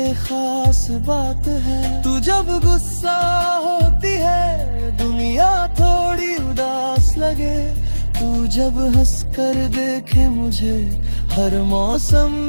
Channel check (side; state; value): both; inverted; correlation -1.00